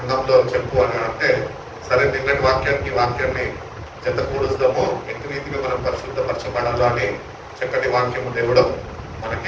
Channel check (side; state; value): both; identical; correlation 1.00